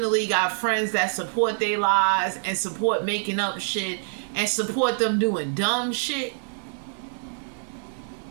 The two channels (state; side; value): silent; left; 61 dB below the other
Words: got friends that support their lies and support making up shit and support them doing dumb shit,